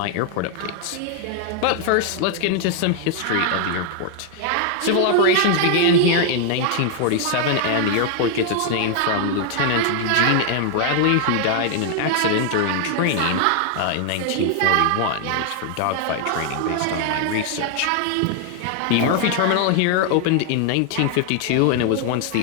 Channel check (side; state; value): both; different; correlation 0.00